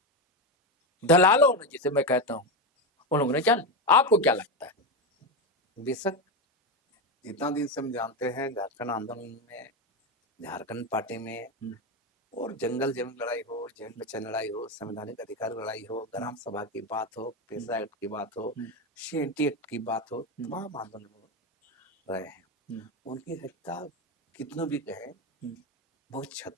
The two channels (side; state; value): both; normal; correlation 0.13